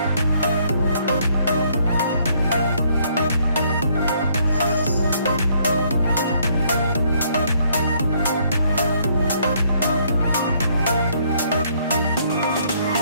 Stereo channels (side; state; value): both; inverted; correlation -0.67